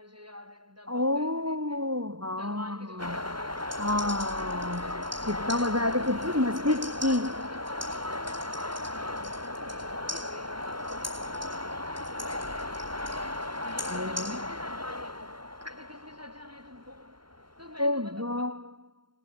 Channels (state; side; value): late; left; 0.72 ms